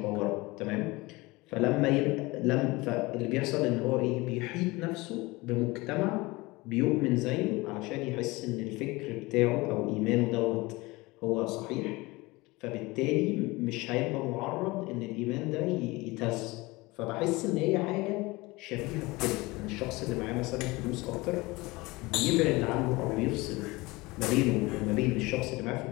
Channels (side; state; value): right; quieter; 22.3 dB